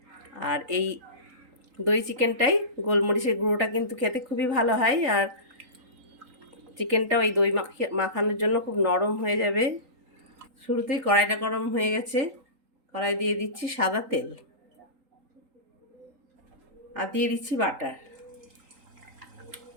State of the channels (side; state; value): left; late; 3.8 ms